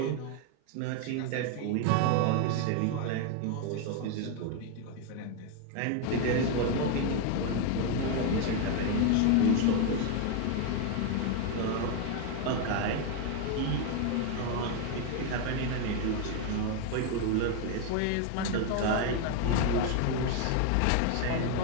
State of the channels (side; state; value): both; different; correlation 0.01